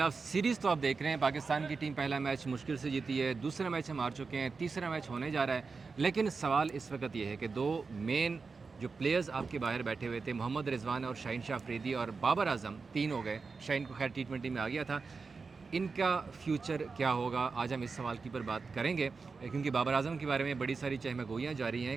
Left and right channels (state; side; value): quieter; left; 4.6 dB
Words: सीरीज़ तो आप देख रहे हैं। पाकिस्तान की टीम पहला मैच मुश्किल से जीती है, दूसरा मैच हम हार चुके हैं, तीसरा मैच होने जा रहा है। लेकिन सवाल इस वक्त ये है कि दो मेन जो प्लेयर्स आपके बाहर बैठे हुए थे, मोहम्मद रिजवान और शाहीन शाह अफरीदी और बाबर आजम, तीन हो गए। शाहीन को खैर टी20 में आ गया था। इनका फ्यूचर क्या होगा, आज हम इस सवाल की पर बात करेंगे, क्योंकि बाबर आजम के बारे में बड़ी सारी चहमगोइयाँ जारी हैं